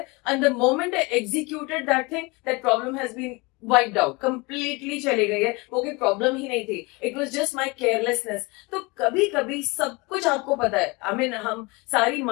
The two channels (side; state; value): right; quieter; 26.2 dB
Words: and the moment I executed that thing that problem has been wiped out, completely चली गई है, वो कोई प्रॉब्लम ही नहीं थी, it was just my carelessness. तो कभी कभी सब कुछ आपको पता है, आई मीन हम सारी